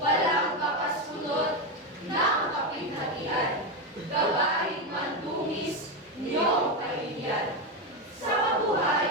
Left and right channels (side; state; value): both; normal; correlation 0.11